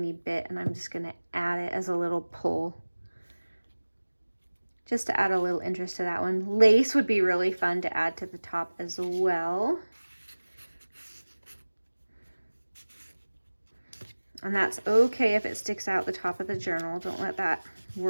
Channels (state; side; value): inverted; both; correlation -1.00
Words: bit and I'm just gonna add it as a little pull, just to add a little interest to that one. Lace would be really fun to add to the top as well. And that's okay if it sticks out the top of the journal. Don't let that